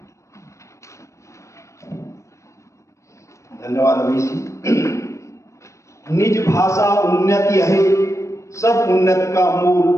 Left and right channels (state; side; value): late; right; 0.15 ms